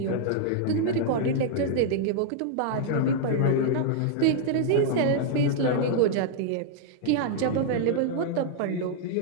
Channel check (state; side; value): different; both; correlation -0.01